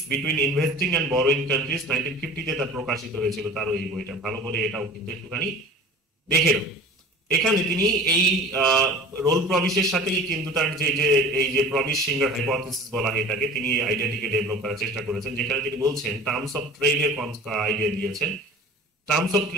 between investing and borrowing countries 1950-তে তার প্রকাশিত হয়েছিল তার এই বইটা। ভালো করে এটাও কিন্তু একটুখানি দেখে নাও। এখানে তিনি এই রোল প্রভিসের সাথেই কিন্তু তার এই যে প্রভিস সিঙ্গার হাইপোথিসিস বলা হয় এটাকে, তিনি এই আইডিয়াটিকে ডেভেলপ করার চেষ্টা করেছেন, যেখানে তিনি বলছেন টার্মস অফ ট্রেড এর আইডিয়া দিয়েছেন। Terms of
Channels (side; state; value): both; normal; correlation 0.40